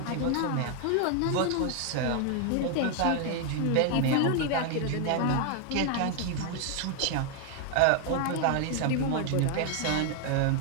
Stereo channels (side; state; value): both; different; correlation 0.00